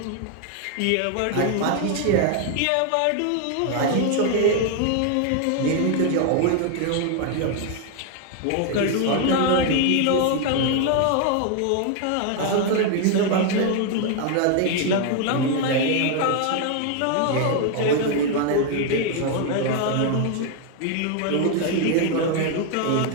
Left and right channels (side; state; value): both; different; correlation 0.01